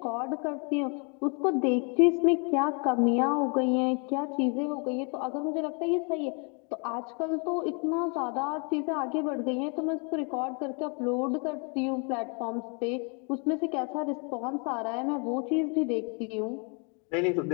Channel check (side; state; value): right; quieter; 36.2 dB